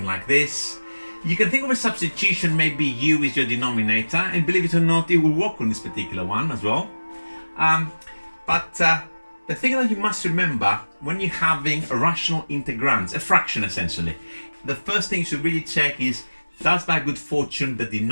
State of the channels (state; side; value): inverted; both; correlation -1.00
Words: like this. You can think of a substitution, maybe u is your denominator, and believe it or not, it will work on this particular one as well. But the thing that you must remember when you're having a rational integrands, a fraction essentially, the first thing you should really check is does by good fortune the